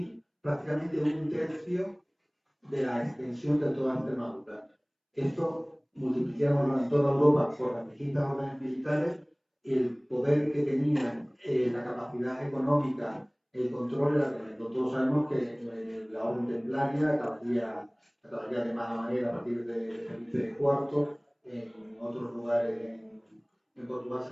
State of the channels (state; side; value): identical; both; correlation 1.00